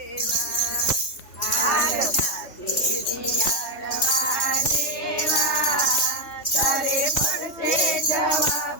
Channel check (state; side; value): late; right; 3.2 ms